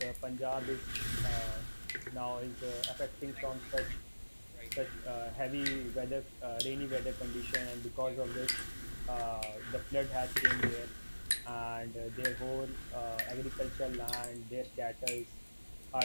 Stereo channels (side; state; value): both; inverted; correlation -1.00